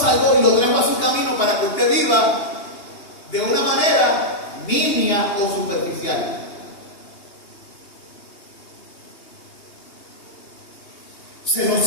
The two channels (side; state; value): right; late; 2.8 ms